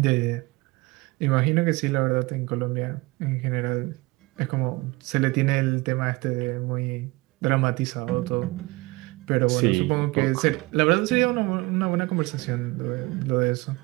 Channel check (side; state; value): left; quieter; 22.9 dB